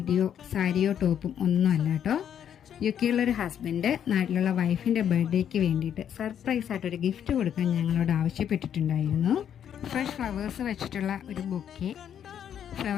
സാരിയോ ടോപ്പും ഒന്നുമല്ല കേട്ടോ. യുകെയിലുള്ളൊരു ഹസ്ബൻഡ് നാട്ടിലുള്ള വൈഫിൻ്റെ ബർത്ത്ഡേക്ക് വേണ്ടിയിട്ട് സർപ്രൈസ് ആയിട്ടൊരു ഗിഫ്റ്റ് കൊടുക്കാൻ ഞങ്ങളോട് ആവശ്യപ്പെട്ടിട്ടുണ്ടായിരുന്നു. ഫ്രഷ് ഫ്ലവേഴ്സ് വെച്ചിട്ടുള്ള ഒരു ബൊക്കെ,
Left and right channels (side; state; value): right; quieter; 9.2 dB